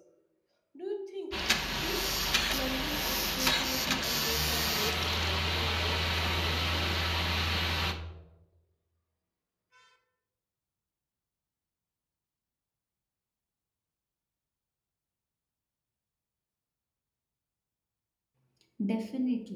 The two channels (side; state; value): both; identical; correlation 1.00